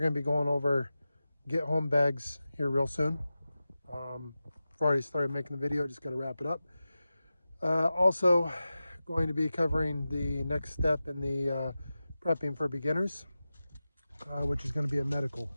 to be going over get home bags here real soon. I've already started making the video, just got to wrap it up. Also going to be covering the next step in the prepping for beginners, which is going to be a medical.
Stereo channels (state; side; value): inverted; both; correlation -0.94